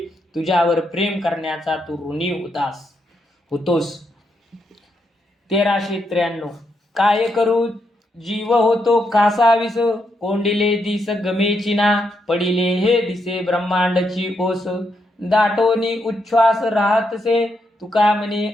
तुझ्यावर प्रेम करण्याचा तू ऋणी होतोस. 1393. काय करू जीव होतो कासावीस, कोंडिले दिस गमेची ना, पडिले हे दिसे ब्रह्मांडची ओस, दाटोनी उच्छ्वास राहतसे, तुका म्हणे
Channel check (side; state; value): both; normal; correlation 0.80